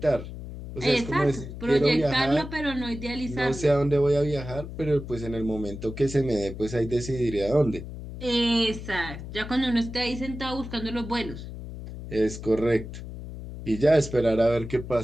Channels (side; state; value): left; noise; hum, 10 dB below the sound